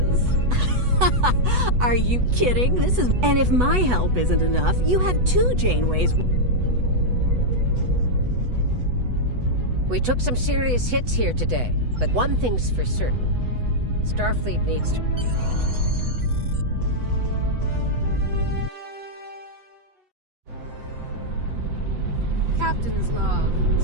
Are you kidding? And if my help isn't enough, you have 2 Janeways. We took some serious hits here today, but one thing's for certain. Starfleet needs to... Captain's log,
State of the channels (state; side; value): late; left; 8.1 ms